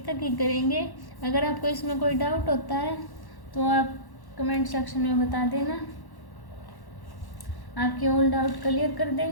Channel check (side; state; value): right; late; 1.1 ms